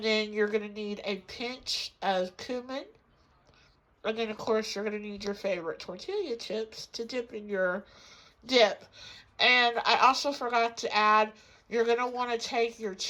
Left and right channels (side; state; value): both; identical; correlation 1.00